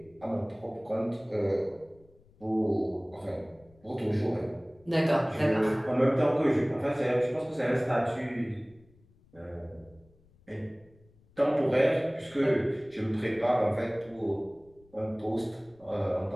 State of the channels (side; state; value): left; noise; rumble, 29 dB below the sound